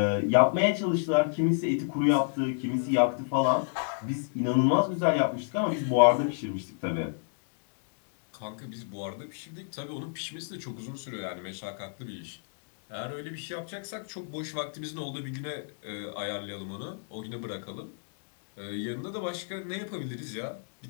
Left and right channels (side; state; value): right; silent; digital silence